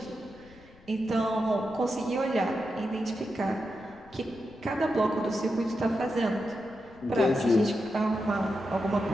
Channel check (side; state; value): left; noise; rumble, 24 dB below the sound